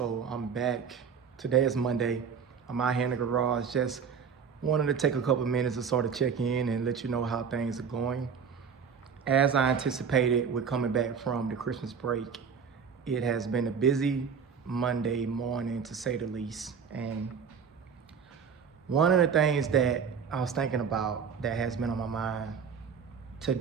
I'm back. Today is Monday. I'm out here in the garage. Just wanted to take a couple minutes to sort of check in and let you know how things are going. As I anticipated, we're coming back from the Christmas break. It has been a busy Monday morning, to say the least. And one of the things that I was thinking about that has been on my mind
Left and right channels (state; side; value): quieter; left; 6.6 dB